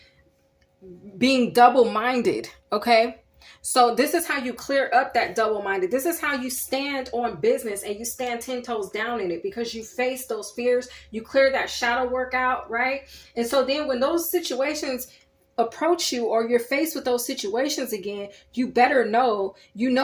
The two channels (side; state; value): both; identical; correlation 1.00